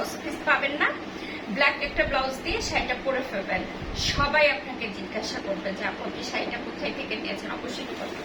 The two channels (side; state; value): both; identical; correlation 1.00